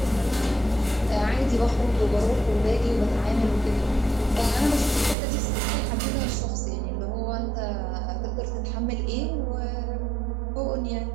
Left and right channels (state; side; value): drops out; left; at 5.2 s